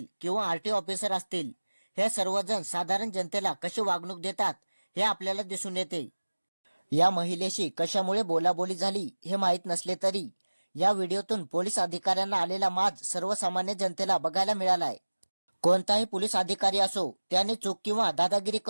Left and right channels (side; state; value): both; inverted; correlation -1.00